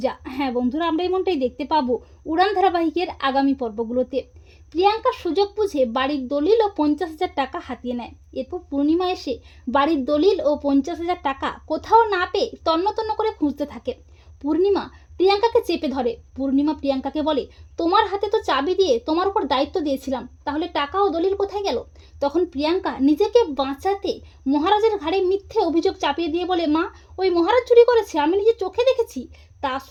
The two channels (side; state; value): both; identical; correlation 1.00